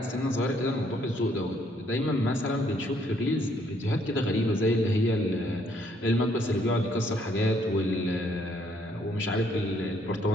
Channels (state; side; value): normal; both; correlation 0.68